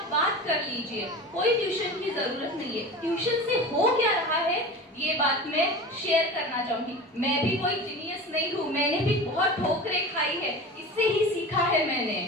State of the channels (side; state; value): both; normal; correlation 0.33